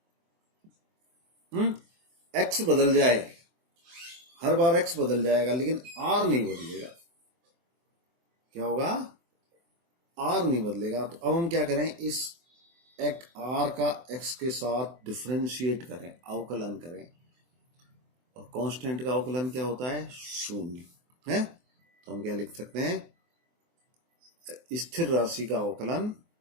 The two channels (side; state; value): left; late; 24 ms